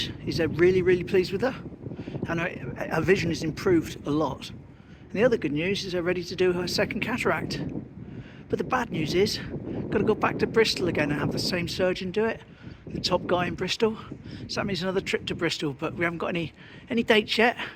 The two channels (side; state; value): both; identical; correlation 1.00